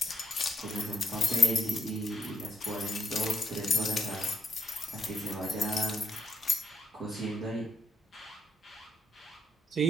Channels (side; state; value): both; normal; correlation 0.77